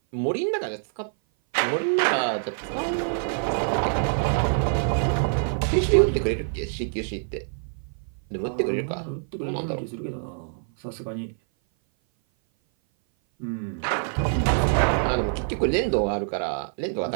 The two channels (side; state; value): left; silent; 57 dB below the other